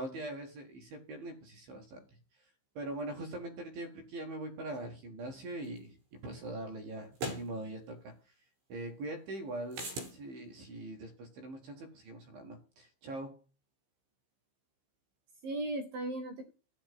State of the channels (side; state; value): left; late; 15 ms